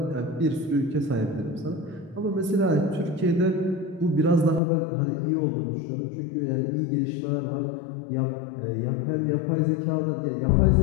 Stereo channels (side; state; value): right; drops out; at 4.6 s